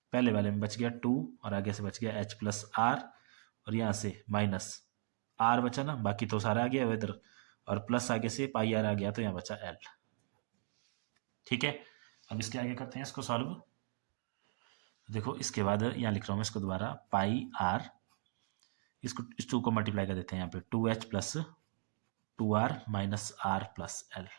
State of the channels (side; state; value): left; silent; digital silence